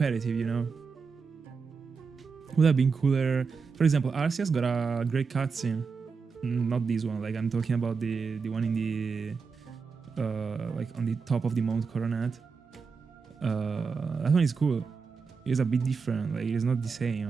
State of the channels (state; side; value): quieter; left; 5.2 dB